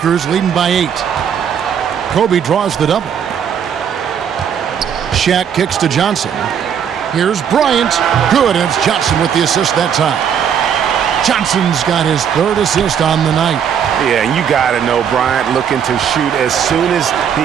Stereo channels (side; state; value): left; quieter; 8.1 dB